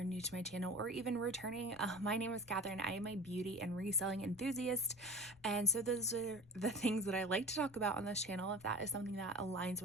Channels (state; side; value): noise; left; rumble, 24 dB below the sound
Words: new to my channel or even returning. My name is Catherine. I am a beauty and reselling enthusiast, and so those are the things that I like to talk about on this channel. If that is something that aligns